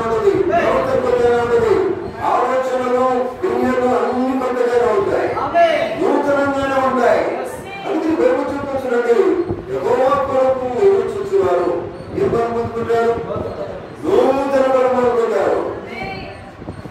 ఉంటుంది, ప్రవర్తన కొత్తగానే ఉంటుంది, ఆలోచనలు దునియాలో అన్ని కొత్తగానే ఉంటాయి, నూతనంగానే ఉంటాయి. అందుకే బైబిల్ చూపించండి, యెహోవా కొరకు ఎదురు చూసేవారు ఏం బలం పొందుకుంటారు? నూతన బలం పొందుకుంటారు.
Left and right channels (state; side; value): identical; both; correlation 1.00